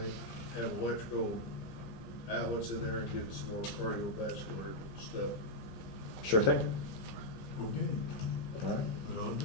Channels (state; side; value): late; right; 15 ms